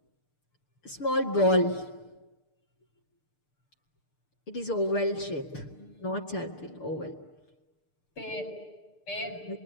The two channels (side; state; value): right; late; 6.7 ms